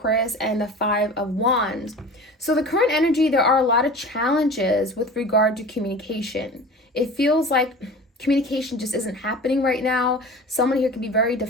and the Five of Wands. So the current energy, there are a lot of challenges with regard to communication. It feels like communication just isn't happening right now. Someone here can be very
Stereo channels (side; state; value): both; normal; correlation 0.37